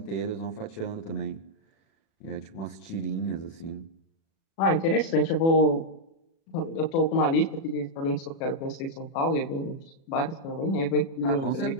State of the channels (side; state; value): right; late; 37 ms